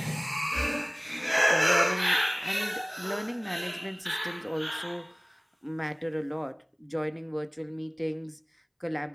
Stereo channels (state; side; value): identical; both; correlation 1.00